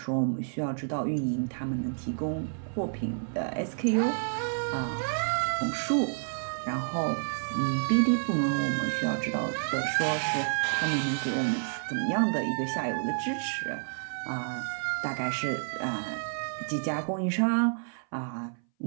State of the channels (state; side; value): silent; left; 58 dB below the other